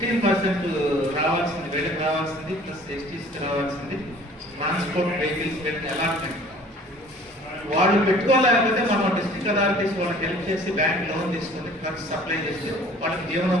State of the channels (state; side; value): normal; both; correlation 0.50